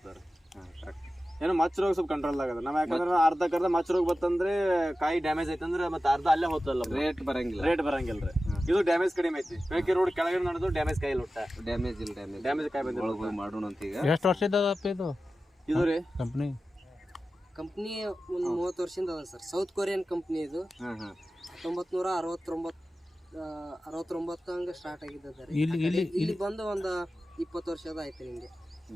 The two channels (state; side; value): normal; both; correlation 0.94